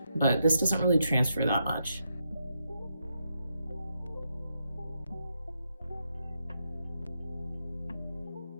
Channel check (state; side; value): inverted; both; correlation -0.82